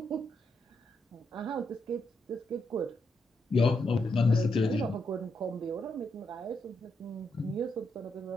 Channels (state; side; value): normal; both; correlation 0.81